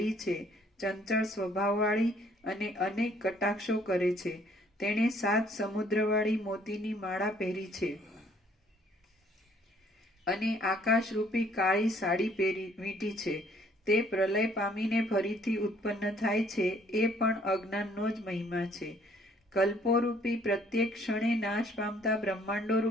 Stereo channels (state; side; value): normal; both; correlation 0.61